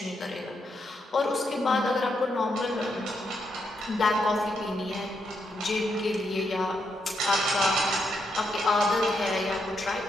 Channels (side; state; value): both; normal; correlation 0.80